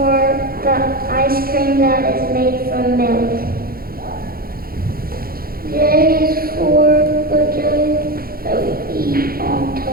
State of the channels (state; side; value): late; left; 0.43 ms